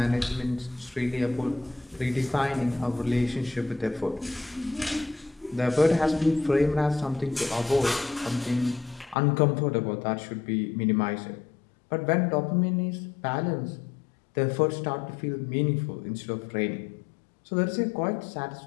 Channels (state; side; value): drops out; right; at 9.2 s